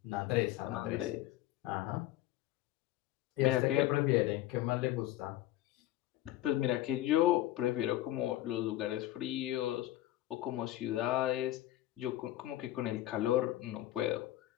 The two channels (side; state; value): right; quieter; 14.9 dB